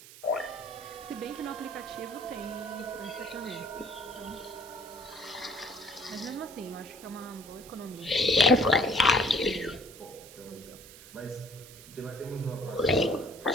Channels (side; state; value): right; noise; hiss, 18 dB below the sound